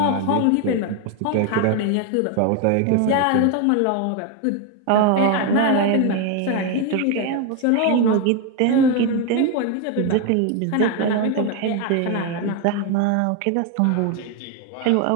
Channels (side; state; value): both; different; correlation 0.01